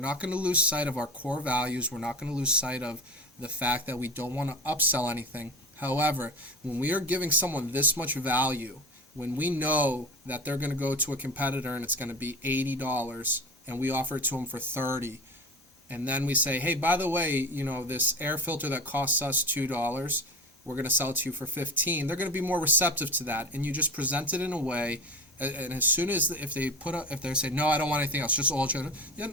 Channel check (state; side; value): normal; both; correlation 0.29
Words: going to lose sight of our core values. We're not going to lose sight of the fact that we don't want to upsell anything. However, when we are giving someone this much value, when we know that they're going to go to a competitor and it's going to be $80 and we offer it to them for $30, and then we say, hey, by the way, this air filter that costs us $2, we're going to sell it to you for $15, they're going to be more receptive to that. And you just present it in a way, and as soon as if they say, no, I don't want anything else, just oil change, yeah,